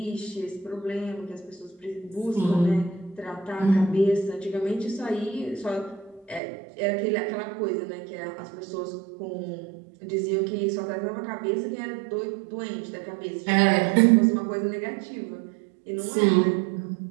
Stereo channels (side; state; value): left; drops out; at 6.4 s